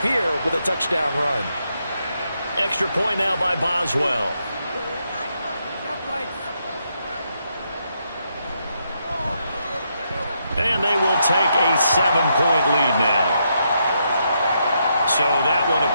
here with a touchdown run. Extra point now by Boswell. And they will take a 7-point lead now. So that one a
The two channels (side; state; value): both; inverted; correlation -0.79